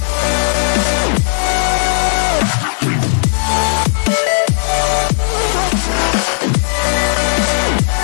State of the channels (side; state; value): right; silent; digital silence